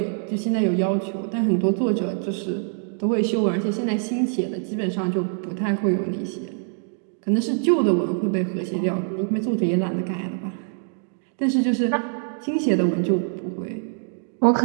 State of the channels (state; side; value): silent; left; 60 dB below the other